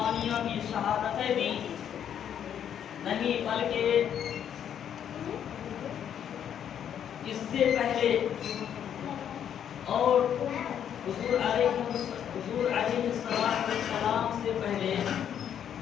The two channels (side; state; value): right; quieter; 9.2 dB